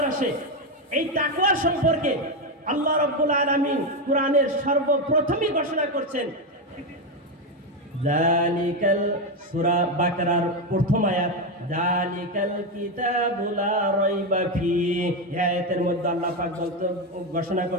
আসে? এই তাকওয়া সম্পর্কে আল্লাহ রাব্বুল আলামিন কোরআনের সর্বপ্রথমই ঘোষণা করছেন। যালিকাল, সূরা বাকারার প্রথম আয়াত, যালিকাল কিতাবু লা রাইবা ফিহি। এই আয়াতের মধ্যে আল্লাহ পাক ঘোষণা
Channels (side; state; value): both; normal; correlation 0.10